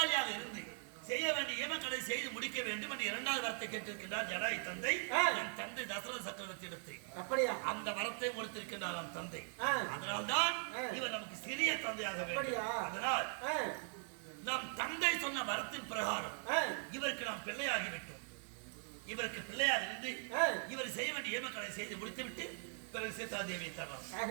இருந்து செய்ய வேண்டிய ஏமக்கடை செய்து முடிக்க வேண்டும் என்று இரண்டாவது வரத்தை கேட்டிருக்கின்றார் ஜடாயு தந்தை. நம் தந்தை தசரத சக்கரவர்த்தி இடத்தை அப்படியா? அந்த வரத்தை கொடுத்திருக்கின்றார் நம் தந்தை. அதனால்தான் இவர் நமக்கு சிறிய தந்தையாக வேண்டும். அதனால் நம் தந்தை சொன்ன வரத்தின் பிரகாரம் இவருக்கு நாம் பிள்ளையாகிவிட்டோம். இவருக்கு பிள்ளையாக இருந்து இவர் செய்ய வேண்டிய ஏமக்கடை செய்து முடித்துவிட்டு பிறகு சீதா தேவியை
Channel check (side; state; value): left; silent; 51 dB below the other